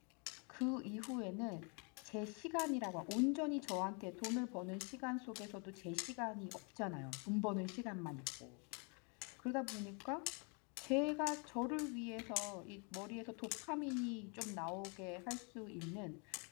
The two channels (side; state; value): right; quieter; 35.3 dB